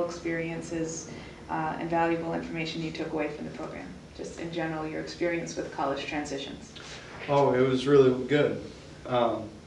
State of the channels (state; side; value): identical; both; correlation 1.00